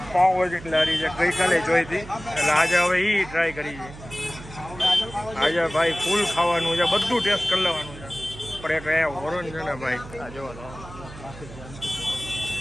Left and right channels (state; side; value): noise; right; hum, 16 dB below the sound